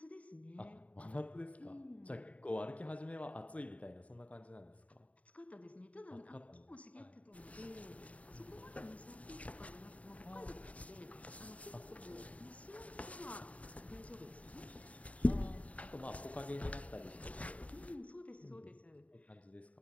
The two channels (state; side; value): late; right; 0.067 ms